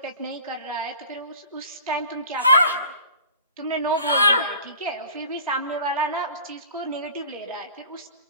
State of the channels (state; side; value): inverted; both; correlation -0.43